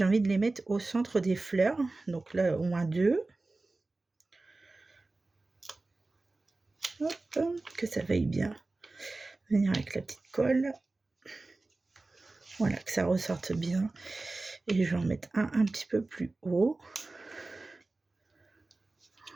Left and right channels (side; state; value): left; quieter; 3.2 dB